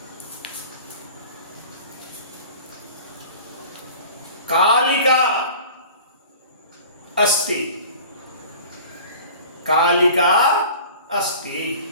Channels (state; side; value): inverted; both; correlation -0.42